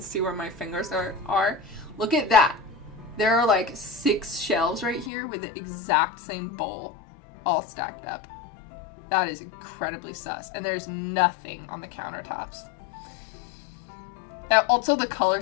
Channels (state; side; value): drops out; right; at 5.1 s